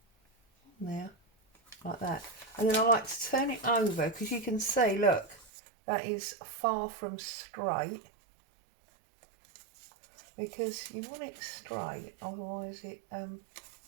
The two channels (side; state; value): left; drops out; at 5.5 s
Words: on there like that. And then I like to turn it over, because you can see, look, that is far from straight, because you want it straight, otherwise it